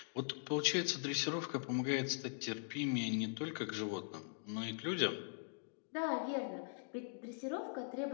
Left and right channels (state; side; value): silent; right; digital silence